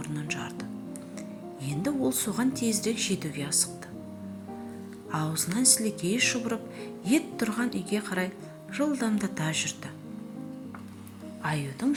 жарды. Енді ол соған тезірек жетуге асықты. Аузынан сілекейі шұбырып, ет тұрған үйге қарай жылдамдата жүрді. Аюдың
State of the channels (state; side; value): identical; both; correlation 1.00